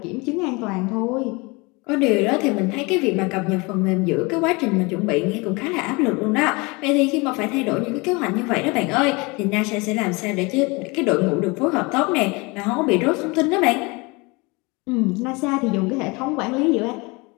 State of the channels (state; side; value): quieter; right; 26.5 dB